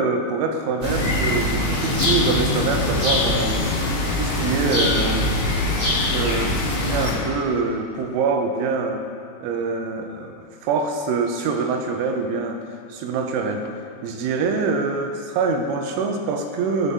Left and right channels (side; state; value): left; late; 21 ms